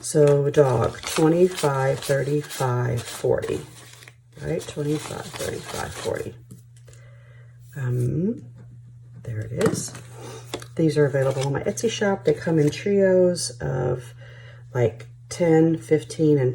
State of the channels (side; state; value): both; identical; correlation 1.00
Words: So dog, 25, 35, 40, right? 25, 35, 40. There it is. These are available on my Etsy shop. They come in trios of like 10, 15, and